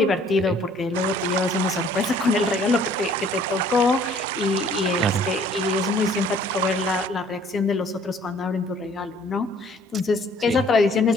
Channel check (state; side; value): normal; both; correlation 0.57